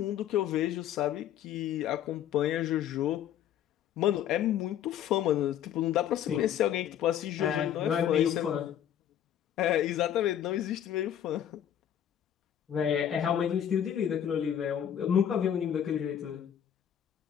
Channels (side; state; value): right; quieter; 10.1 dB